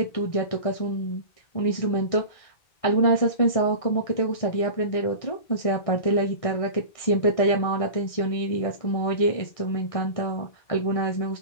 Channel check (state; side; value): late; right; 1.6 ms